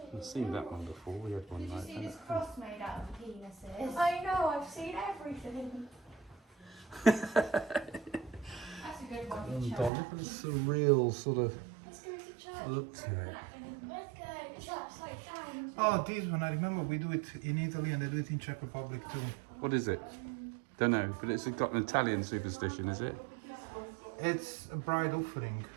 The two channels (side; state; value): left; drops out; at 9.9 s